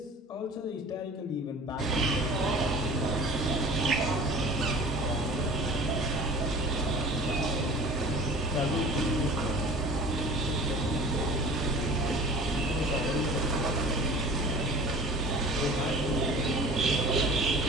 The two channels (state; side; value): normal; both; correlation 0.43